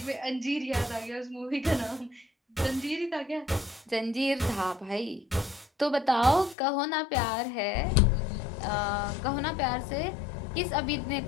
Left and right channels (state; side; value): drops out; right; at 6.6 s